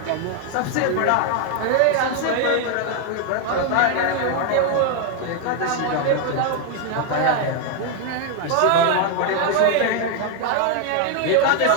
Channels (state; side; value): different; both; correlation 0.01